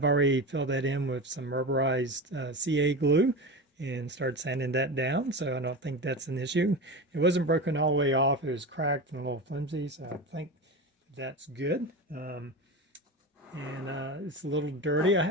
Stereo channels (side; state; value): both; normal; correlation 0.26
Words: already filled that in with some rubberized CA glue and started sanding that down, so I don't think that's an issue. It wasn't broken all the way off. It was cracked and a little flimsy, so I think that's good. It's a little dirty. I